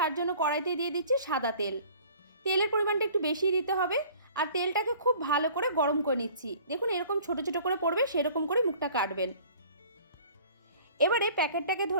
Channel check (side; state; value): both; inverted; correlation -0.49